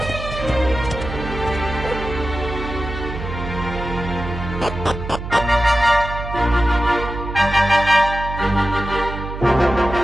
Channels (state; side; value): noise; right; hum, 8 dB below the sound